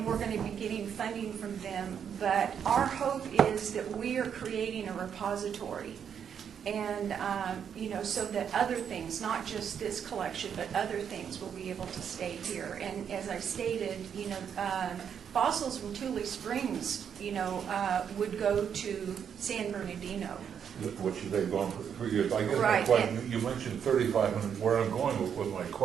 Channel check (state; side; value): quieter; left; 7.9 dB